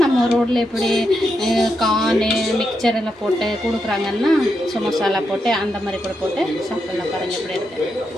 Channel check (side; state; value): both; normal; correlation 0.84